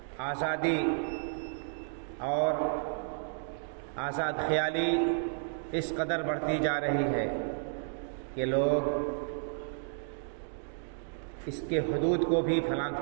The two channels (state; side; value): silent; left; digital silence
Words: آزادی اور آزاد خیالی اس قدر بڑھتی جا رہی ہے کہ لوگ اس کے حدود کو بھی پھلانگ